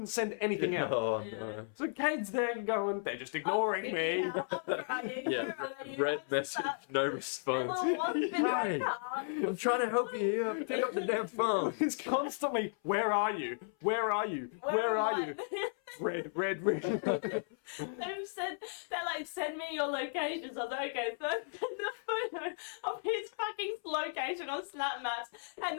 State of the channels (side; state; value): right; silent; 55 dB below the other